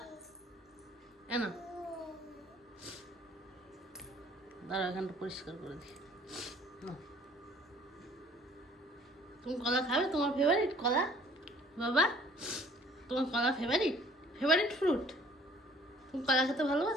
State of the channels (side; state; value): both; normal; correlation 0.55